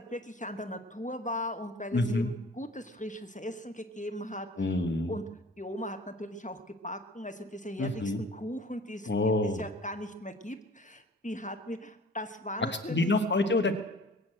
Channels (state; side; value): normal; both; correlation 0.47